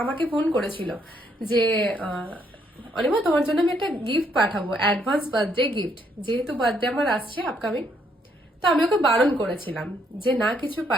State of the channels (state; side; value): normal; both; correlation 0.71